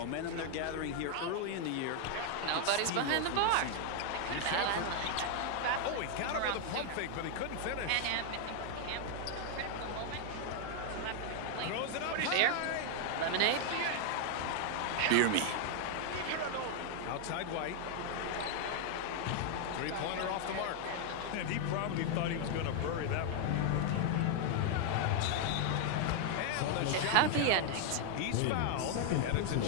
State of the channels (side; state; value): both; different; correlation 0.00